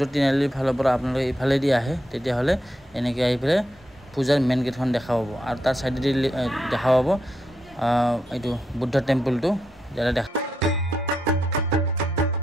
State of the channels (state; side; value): normal; both; correlation 0.82